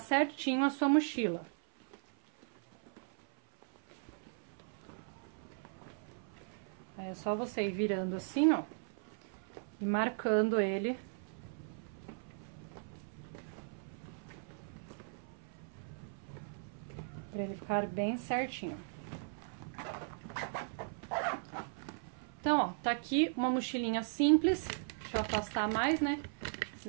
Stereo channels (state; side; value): silent; left; 53 dB below the other